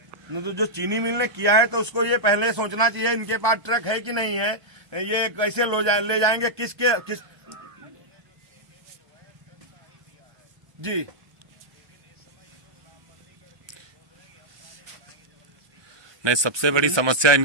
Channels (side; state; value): left; late; 1.2 ms